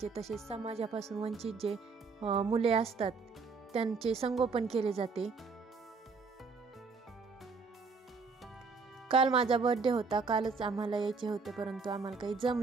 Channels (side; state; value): left; quieter; 4.7 dB